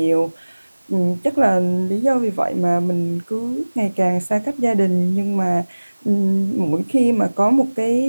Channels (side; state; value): both; inverted; correlation -1.00